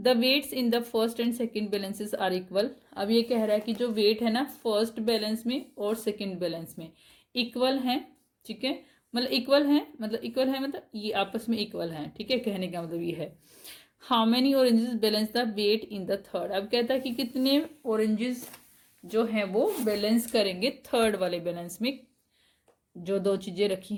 The weights in the first and second balances are equal. अब ये कह रहा है कि जो वेट है ना फर्स्ट बैलेंस में और सेकेंड बैलेंस में इक्वल है। ठीक है, मतलब इक्वल है, मतलब ये आपस में इक्वल है। ठीक है, कहने का मतलब ये है। How many oranges balance the weight in the third, अब कहता है कि कितने ऑरेंजेस जो हैं वो बैलेंस करेंगे थर्ड वाले बैलेंस में, जो 2 चीजें रखी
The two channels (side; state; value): both; identical; correlation 1.00